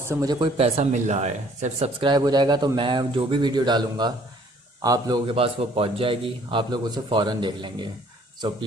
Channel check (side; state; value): both; normal; correlation 0.58